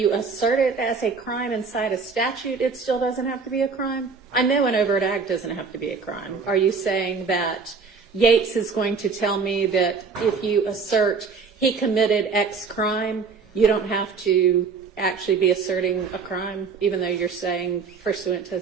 assert it as a crime inside a statute, it still doesn't have to be a crime? I know an overt act doesn't have to be a crime. Are you saying that Yates is going to tell me that if you assert he committed X crime, you don't have to actually be asserting a crime, even though you're saying pursuant to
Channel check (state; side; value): quieter; left; 5.1 dB